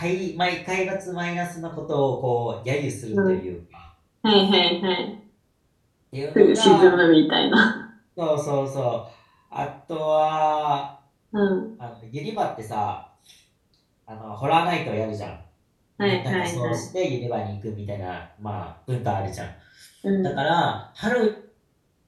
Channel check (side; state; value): both; identical; correlation 1.00